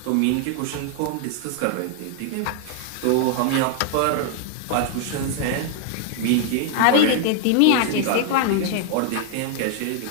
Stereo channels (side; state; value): both; different; correlation 0.00